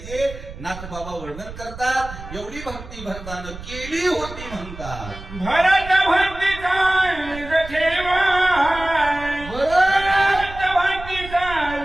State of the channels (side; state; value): right; noise; rumble, 13 dB below the sound